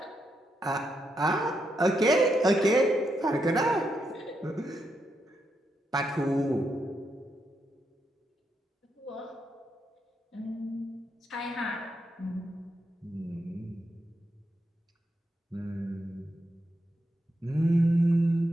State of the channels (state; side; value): normal; both; correlation 0.82